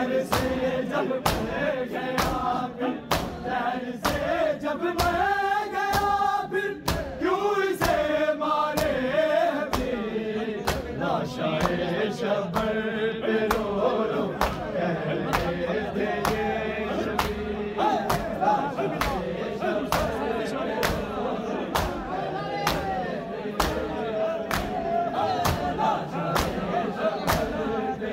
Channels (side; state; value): both; identical; correlation 1.00